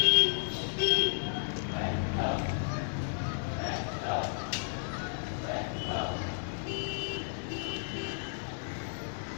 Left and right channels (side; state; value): right; silent; digital silence